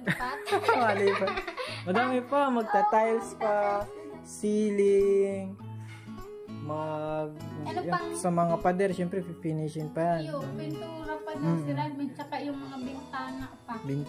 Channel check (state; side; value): identical; both; correlation 1.00